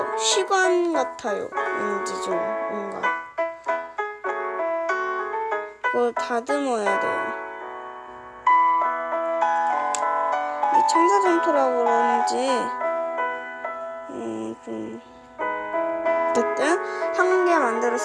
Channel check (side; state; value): both; identical; correlation 1.00